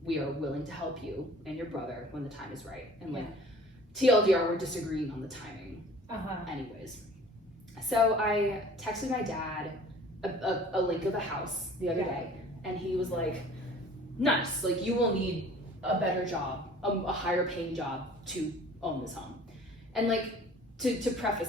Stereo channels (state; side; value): normal; both; correlation 0.49